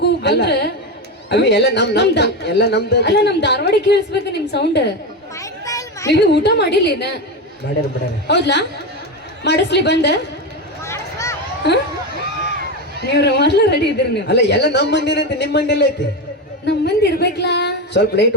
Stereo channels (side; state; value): both; normal; correlation 0.16